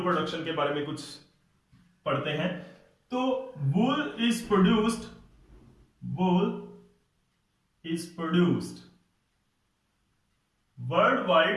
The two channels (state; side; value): identical; both; correlation 1.00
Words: प्रोडक्शन के बारे में कुछ पढ़ते हैं। तो वूल is produced